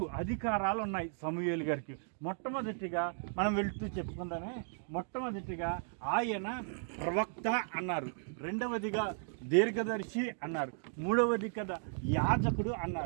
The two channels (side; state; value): left; silent; digital silence